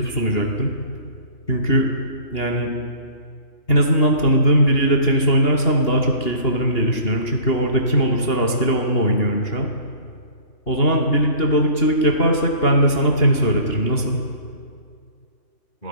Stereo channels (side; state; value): right; late; 2.8 ms